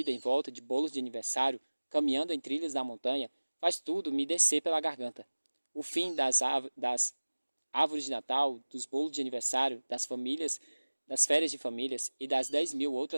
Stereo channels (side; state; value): both; inverted; correlation -1.00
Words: em volta de bolos de aniversário, caminhando em trilhas da montanha, faz tudo me descer pela garganta. O fim das árvores de Natal, dos bolos de aniversário, das famílias, das férias de famílias e das 10.000